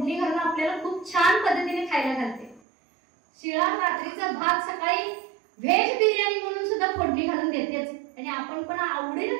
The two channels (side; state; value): left; drops out; at 2.6 s